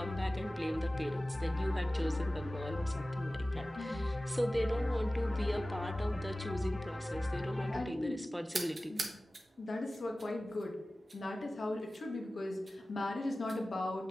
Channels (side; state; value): both; normal; correlation 0.96